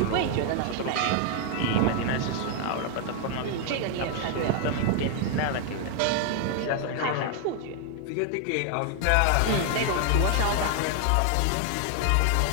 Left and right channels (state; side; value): different; both; correlation 0.00